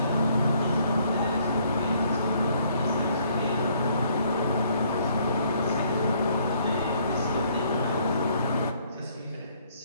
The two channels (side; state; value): both; inverted; correlation -0.65